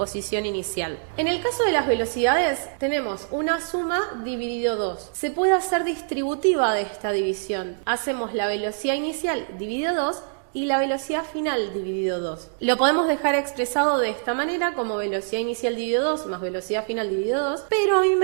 inicial. En el caso de las velocidades tenemos una suma dividido 2. Se puede hacer distributiva de esta división. Hacemos la velocidad inicial dividido 2 y la velocidad final dividido 2. Lo podemos dejar expresado de esta manera como velocidad inicial dividido 2 más velocidad final dividido 2, pero a mí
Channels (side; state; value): left; silent; digital silence